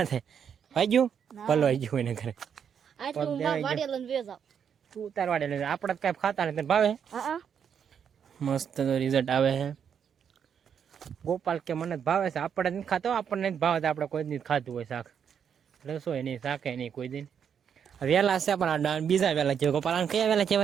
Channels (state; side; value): quieter; left; 7.7 dB